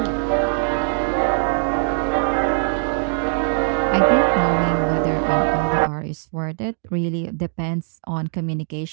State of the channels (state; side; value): silent; left; 60 dB below the other